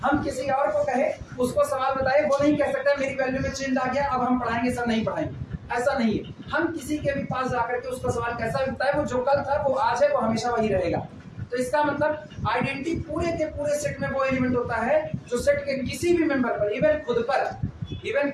हम किसी और को कहे, उसको सवाल बताए, वो नहीं कह सकता मेरी वैल्यू में चेंज आ गया, अब हम पढ़ाएंगे, सर नहीं पढ़ाएंगे। ऐसा नहीं है। हम किसी के भी पास जाकर के उसका सवाल कैसा भी बताए, वो जो कल था वो आज है, वो हमेशा वही रहेगा। तो इसका मतलब आइडेंटिटी पूरे के पूरे सेट में वो एलिमेंट होता है जो सेट के किसी भी मेंबर पर, इवन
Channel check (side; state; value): both; identical; correlation 1.00